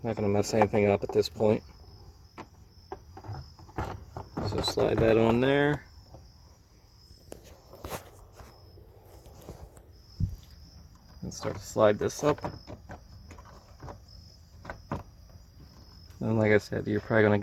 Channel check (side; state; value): both; identical; correlation 1.00